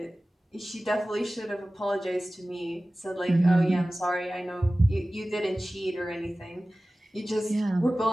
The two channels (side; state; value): both; normal; correlation 0.97